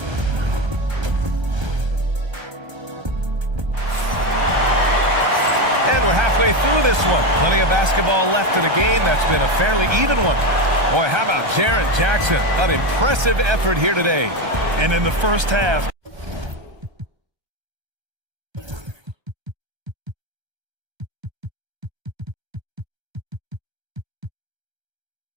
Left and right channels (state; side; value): late; left; 1.3 ms